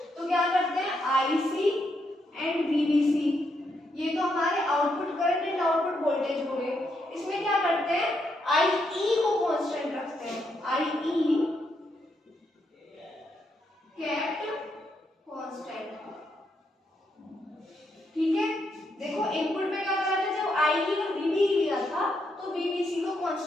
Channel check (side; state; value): both; normal; correlation 0.79